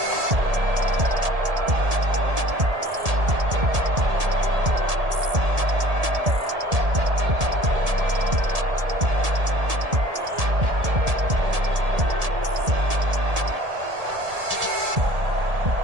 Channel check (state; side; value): late; left; 1.7 ms